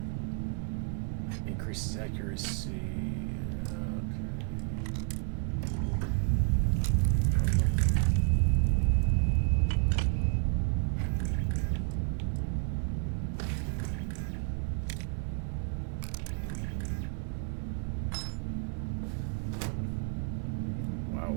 Increases accuracy. Wow.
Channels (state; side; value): quieter; left; 36.9 dB